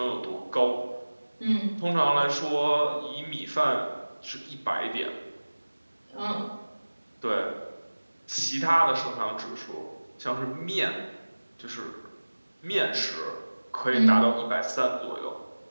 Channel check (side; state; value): both; inverted; correlation -1.00